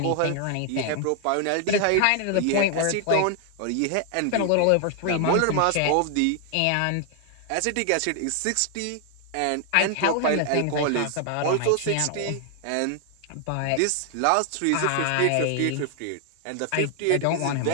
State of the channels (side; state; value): both; different; correlation 0.00